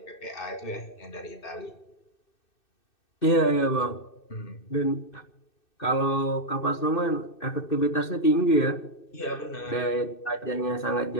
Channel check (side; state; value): right; late; 2.6 ms